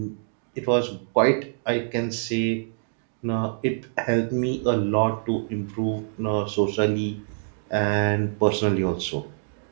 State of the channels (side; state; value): left; silent; digital silence